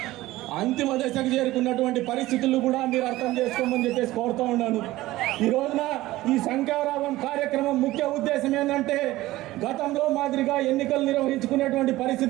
అంతిమ దశకు చేరుకున్నటువంటి పరిస్థితులు కూడా మీరు అర్థం చేసుకోమని చెప్పేసి కోరుతా ఉన్నాను. ఈ రోజున ఈ శంఖారావం కార్యక్రమం ముఖ్య ఉద్దేశం ఏంటంటే గతంలో మాదిరిగా ఎన్నికలు నిర్వహించుకునేటువంటి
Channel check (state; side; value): quieter; left; 17.2 dB